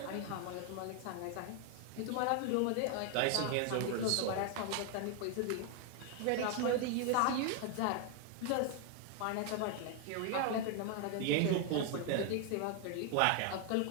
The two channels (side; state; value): both; different; correlation 0.00